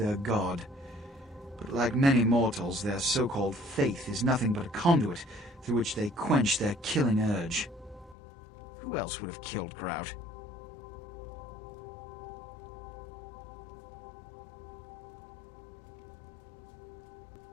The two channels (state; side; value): drops out; right; at 8.2 s